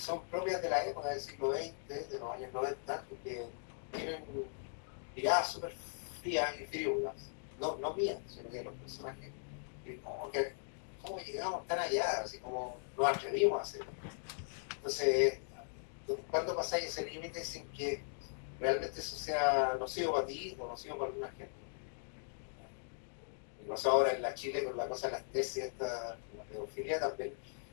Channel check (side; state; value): right; silent; digital silence